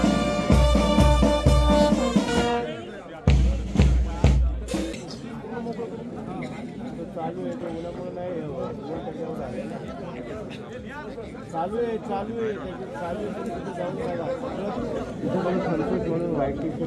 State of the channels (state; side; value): identical; both; correlation 1.00